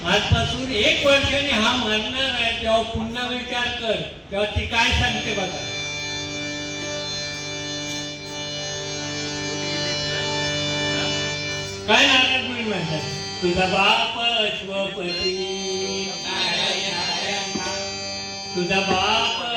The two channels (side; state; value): both; identical; correlation 1.00